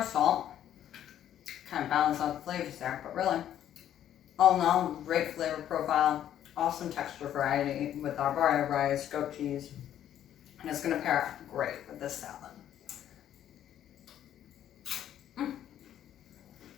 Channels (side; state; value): right; quieter; 10.9 dB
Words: salt, kind of balance out the flavors there, but really, all in all, great flavor profile, awesome texture variety with Arborio rice, goat cheese, and it's going to pair great with this salad.